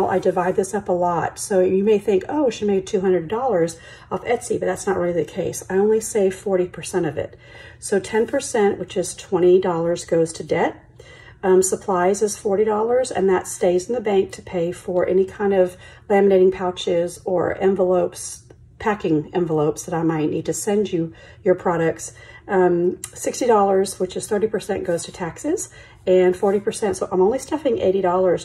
I divide this up a lot. So you may think, oh, she made $200 off Etsy, but that's not really the case. I only save 40% of it. So 10%, which is $20, goes to debt. Supplies is $40, and that stays in the bank to pay for any kind of laminating pouches or envelopes, packing envelopes that I might need to send you your products. $60, which is 30%, goes to taxes, and 40%. So I'm only stuffing $80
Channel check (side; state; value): both; identical; correlation 1.00